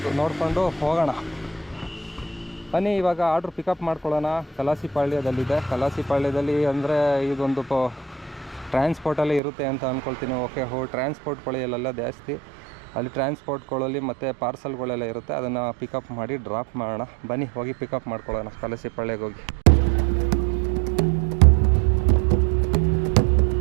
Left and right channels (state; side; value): drops out; left; at 9.4 s